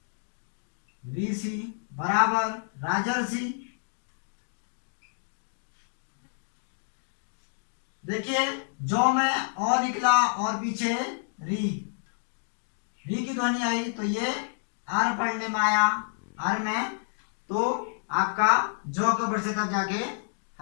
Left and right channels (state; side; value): silent; right; digital silence